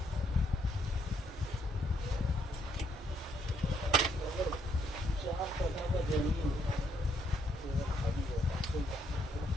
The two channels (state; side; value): normal; both; correlation 0.72